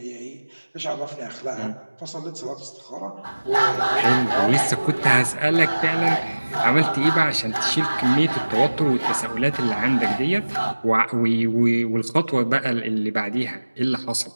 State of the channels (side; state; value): both; inverted; correlation -1.00